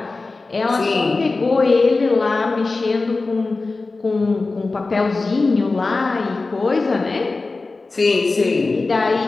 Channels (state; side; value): quieter; right; 3.6 dB